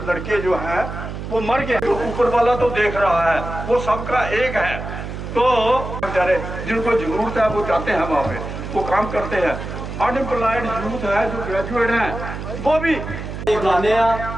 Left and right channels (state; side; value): noise; right; hum, 8 dB below the sound